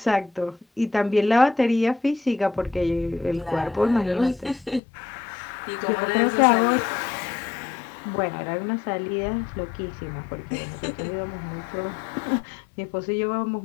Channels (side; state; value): right; drops out; at 4.8 s